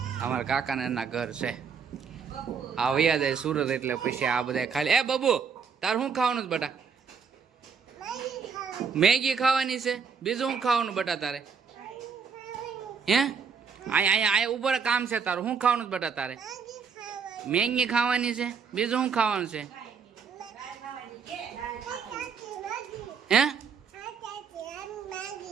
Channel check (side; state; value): left; quieter; 6.1 dB